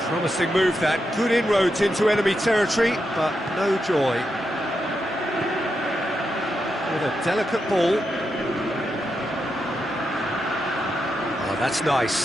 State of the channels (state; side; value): normal; both; correlation 0.85